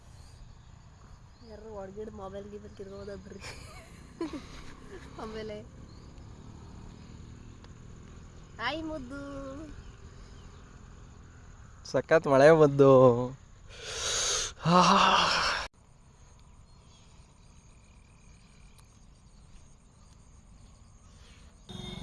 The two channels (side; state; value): both; identical; correlation 1.00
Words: ಯಾರು ಹೊಡ್ಗಿಡ್ ಮೊಬೈಲ್ಗೆ ಬರ್ತಿರ್ಬೋದಾದ್ರಿ. ಆಮೇಲೆ ಆಯ್ ಮುದ್ದು, ಸಖತ್ ಮಳೆ ಬಂದು.